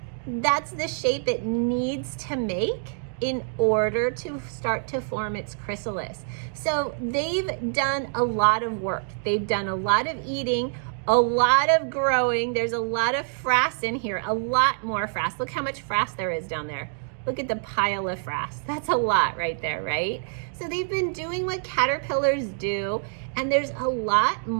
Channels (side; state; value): left; silent; digital silence